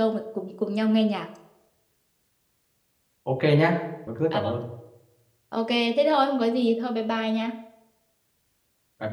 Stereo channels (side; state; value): both; identical; correlation 1.00